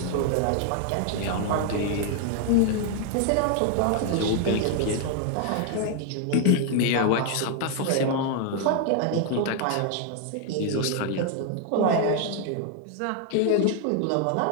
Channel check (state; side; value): different; both; correlation 0.00